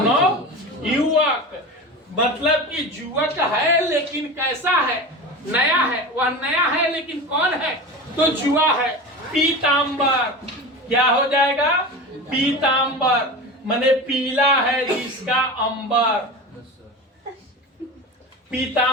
मतलब कि युवक है लेकिन कैसा है? नया है। वह नया है लेकिन कौन है? तो जुआ है। पीतांबर, क्या हो जाएगा? पीतांबर माने पीला है जिसका अंबर,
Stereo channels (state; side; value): normal; both; correlation 0.28